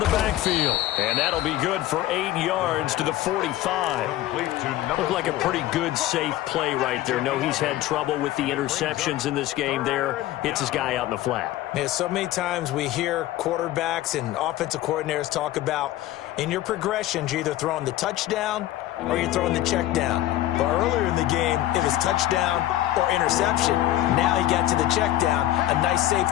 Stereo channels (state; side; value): quieter; right; 14.6 dB